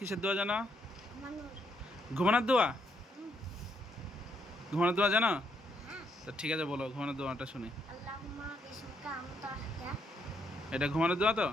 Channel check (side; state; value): both; normal; correlation 0.74